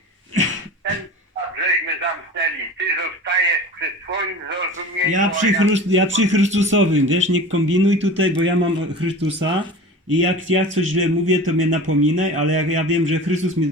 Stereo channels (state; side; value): normal; both; correlation 0.36